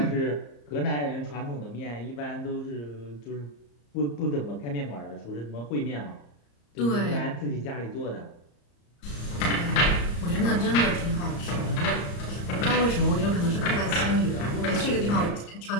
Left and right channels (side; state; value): right; late; 34 ms